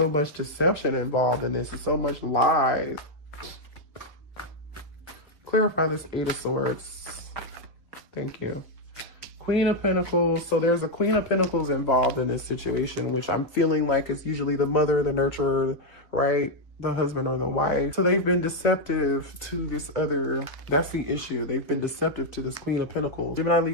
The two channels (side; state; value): right; late; 2.5 ms